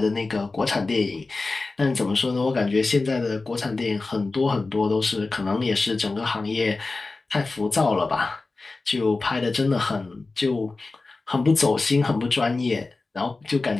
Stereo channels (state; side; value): quieter; right; 3.6 dB